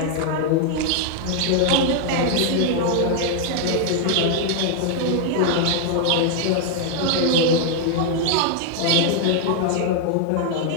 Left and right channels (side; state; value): both; different; correlation 0.00